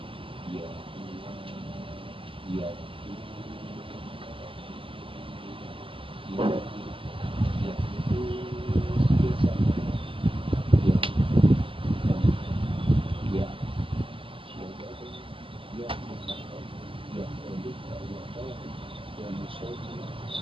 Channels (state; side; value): late; left; 0.25 ms